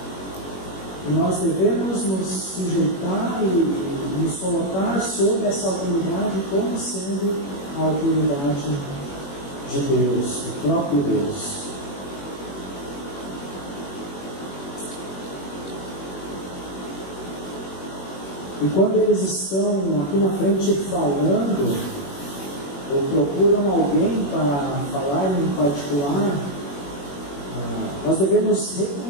E nós devemos nos sujeitar e nos colocar sob essa autoridade como sendo a autoridade de Deus, o próprio Deus. E quando eles estão aqui na frente falando, ou procuram alguém para falar em particular, nós devemos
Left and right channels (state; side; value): late; right; 21 ms